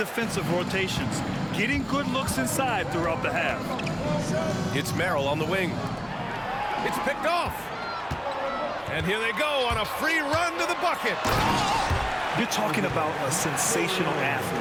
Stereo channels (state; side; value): identical; both; correlation 1.00